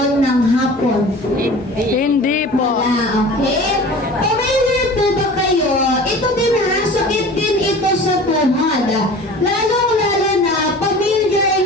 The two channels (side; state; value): both; normal; correlation 0.40